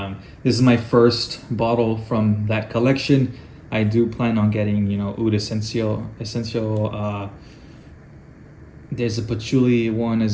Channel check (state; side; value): identical; both; correlation 1.00